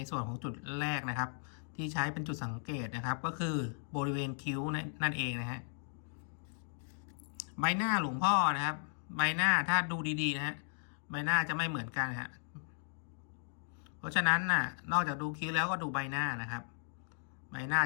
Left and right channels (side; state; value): right; silent; digital silence